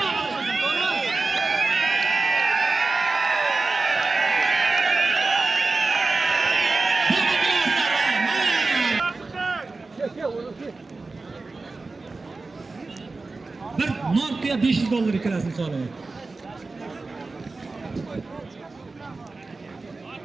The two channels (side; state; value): left; quieter; 3.7 dB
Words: Bir Nokia $500 ikkalasini so'raman.